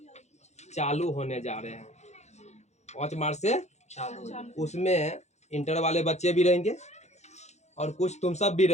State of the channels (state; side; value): late; right; 0.33 ms